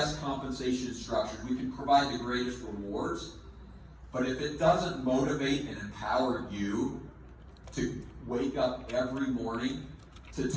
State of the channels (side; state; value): both; identical; correlation 1.00